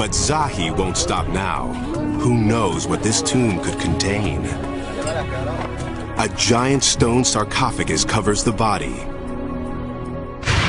Zahi won't stop now. Who knows what this tomb could contain? A giant stone sarcophagus covers the body.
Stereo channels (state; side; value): identical; both; correlation 1.00